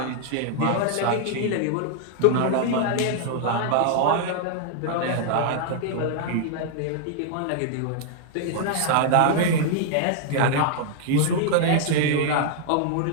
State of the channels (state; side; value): different; both; correlation 0.00